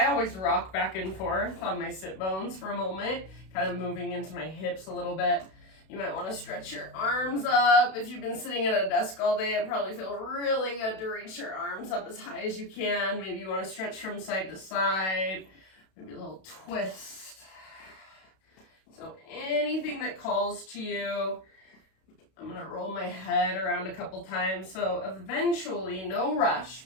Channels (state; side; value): late; right; 32 ms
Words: always rock back and forth on my sit bones for a moment, kind of moving into my hips a little bit. You might want to stretch your arms up. If you've been sitting at a desk all day, it probably feels really good to reach your arms up as high as you can. Maybe you want to stretch from side to side, maybe a little twist. So anything that calls to you. I'm going to roll my head around a couple times. So eventually, no rush,